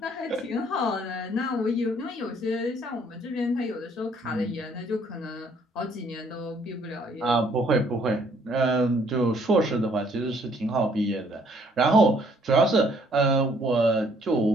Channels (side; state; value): both; normal; correlation 0.63